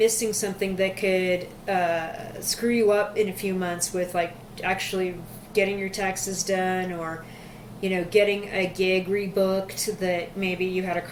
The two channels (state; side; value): identical; both; correlation 1.00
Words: something that could screw you up in a few months with, like, actually getting your taxes done, or, you know, getting a gig rebooked that maybe you had a